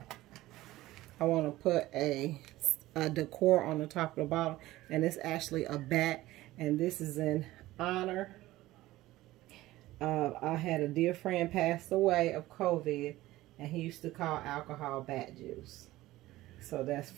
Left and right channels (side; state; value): left; quieter; 16.9 dB